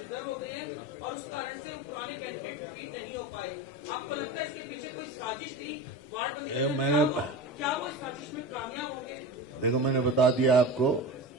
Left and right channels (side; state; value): both; normal; correlation 0.28